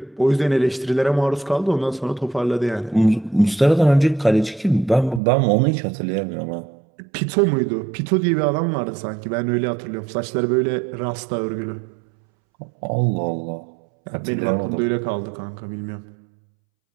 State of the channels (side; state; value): left; drops out; at 5.2 s